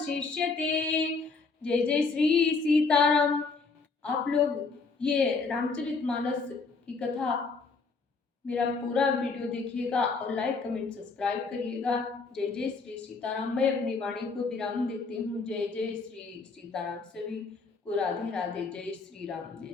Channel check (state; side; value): quieter; right; 4.4 dB